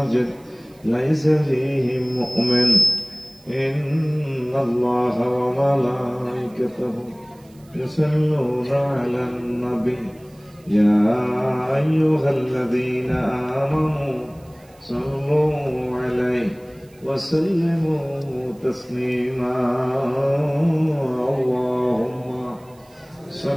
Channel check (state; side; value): noise; right; hiss, 30 dB below the sound